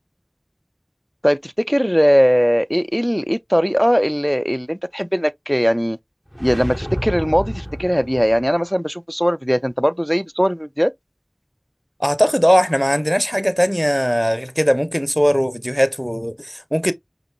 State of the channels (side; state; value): both; identical; correlation 1.00